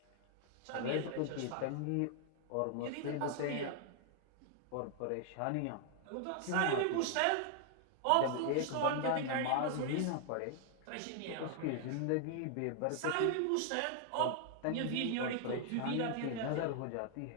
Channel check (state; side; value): different; both; correlation 0.00